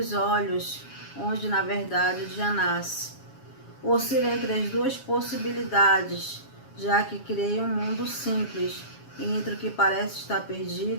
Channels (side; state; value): right; late; 7.3 ms